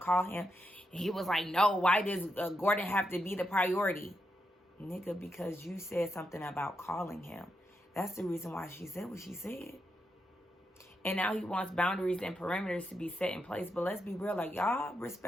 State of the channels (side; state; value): both; normal; correlation 0.84